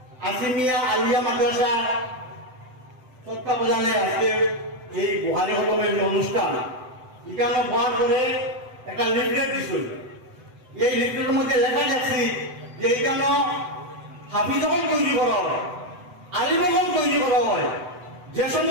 আছিমিয়া আলিয়া মাদ্রাসা তত্ত্বাবধানে আজকে এই বুহারি হলমের যে অনুষ্ঠান এখানে হওয়ার পরে একটা লিফলেট দিছিল। এই লিফলেটের মধ্যে লেখা যাচ্ছে যে এখানে হাফিজগণ তৈরি করা হয়, আলিমগণ তৈরি করা হয়। যে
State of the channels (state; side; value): late; left; 7.9 ms